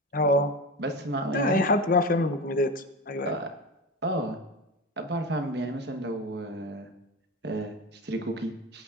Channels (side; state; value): both; normal; correlation 0.25